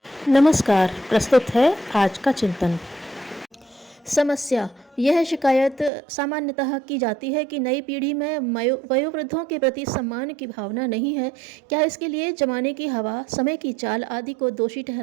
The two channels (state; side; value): drops out; left; at 5.9 s